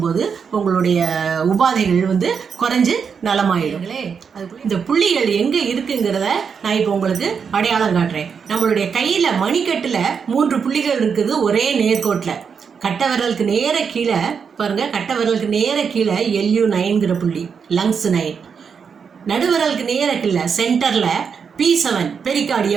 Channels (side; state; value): left; quieter; 6.4 dB